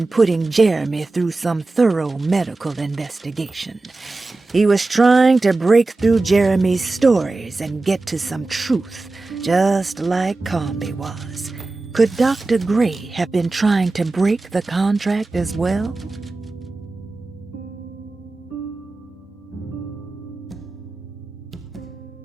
putting Jeremy through some thorough medical investigation. He was trying to break through Jeremy's stories and get to some truth, just like Comby was. Could Dr. Gray have been trying to break the contract as well?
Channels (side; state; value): left; quieter; 3.3 dB